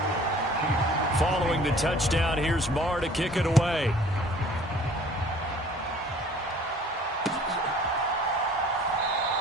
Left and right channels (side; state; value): both; normal; correlation 0.51